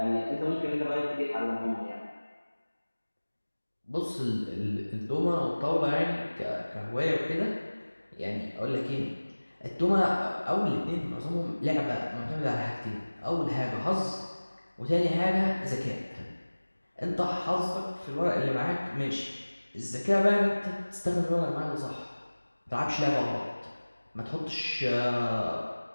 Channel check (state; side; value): inverted; both; correlation -1.00